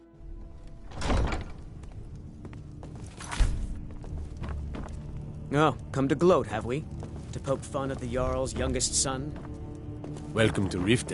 Oh, come to gloat, have we? To poke fun at the Jarl's youngest son? Welcome to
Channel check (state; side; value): identical; both; correlation 1.00